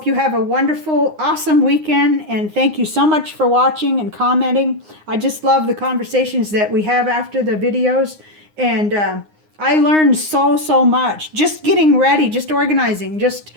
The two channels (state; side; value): late; left; 9.7 ms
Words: you have a wonderful, awesome weekend, and thank you so much for watching and commenting. I just love the conversations that we have after the videos, and I learned so much. Just getting ready, just organizing, just